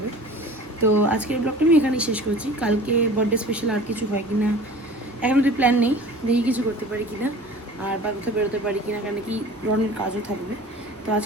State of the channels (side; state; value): both; normal; correlation 0.42